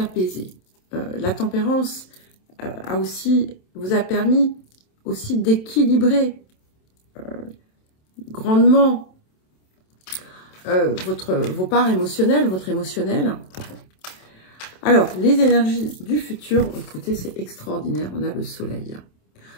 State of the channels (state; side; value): late; right; 27 ms